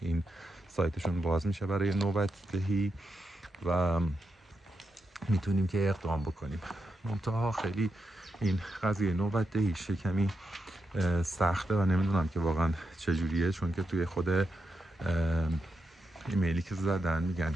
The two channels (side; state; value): both; normal; correlation 0.85